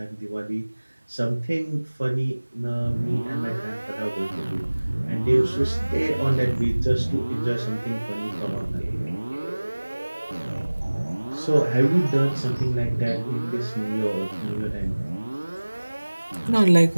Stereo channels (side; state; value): both; inverted; correlation -1.00